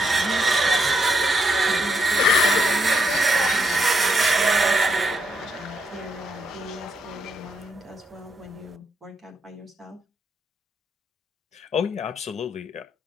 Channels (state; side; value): normal; both; correlation 0.77